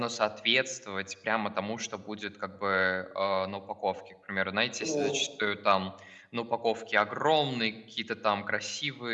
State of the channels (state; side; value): identical; both; correlation 1.00